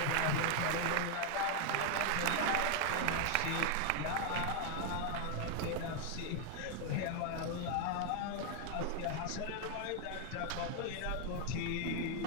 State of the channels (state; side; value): different; both; correlation 0.00